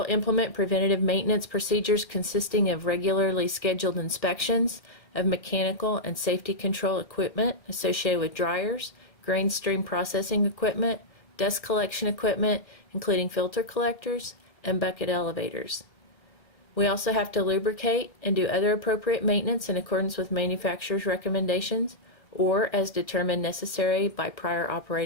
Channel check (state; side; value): late; right; 1.5 ms